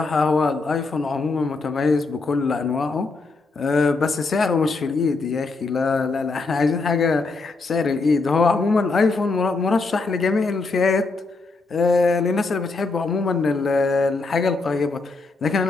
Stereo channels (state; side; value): quieter; right; 3.8 dB